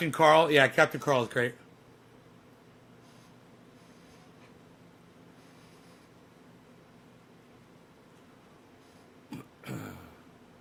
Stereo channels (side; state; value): both; identical; correlation 1.00